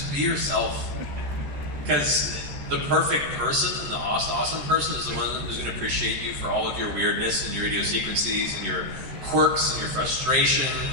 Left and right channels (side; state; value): left; late; 14 ms